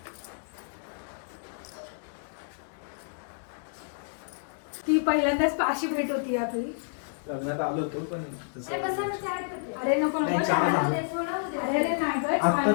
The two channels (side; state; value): right; silent; 58 dB below the other